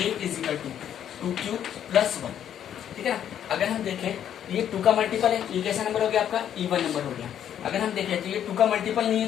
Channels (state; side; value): quieter; right; 9.8 dB